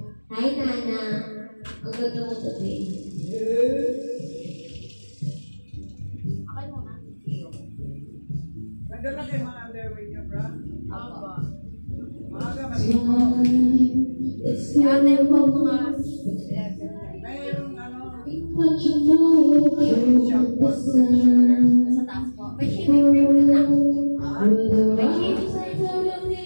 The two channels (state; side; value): inverted; both; correlation -1.00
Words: Hi, Nana. Ang good mood today. Okay muna. Ganda lang kayo mga underwear niya, bro. Aba. Maaga, maligo. Ate po mga Mayroong ano, sa taas po. May shaving cream din na. May shaving